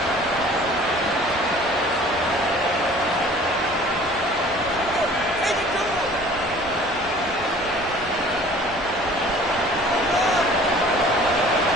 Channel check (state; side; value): normal; both; correlation 0.49